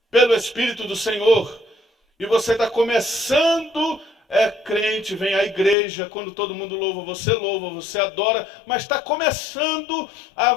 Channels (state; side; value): drops out; right; at 5.8 s